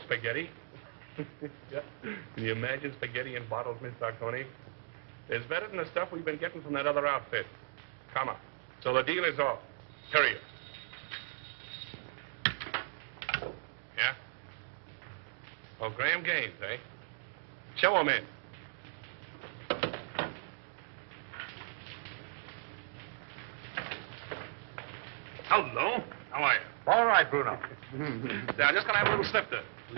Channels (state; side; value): silent; left; digital silence